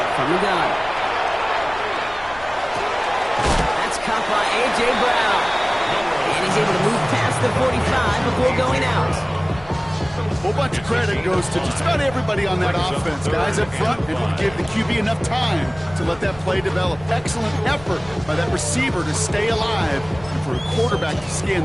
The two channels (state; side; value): noise; left; rumble, 19 dB below the sound